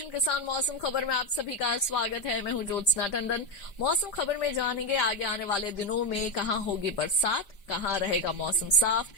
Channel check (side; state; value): right; late; 5.0 ms